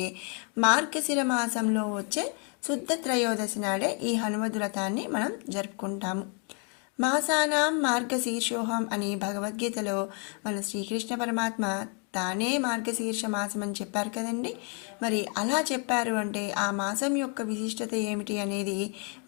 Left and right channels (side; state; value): right; quieter; 38.3 dB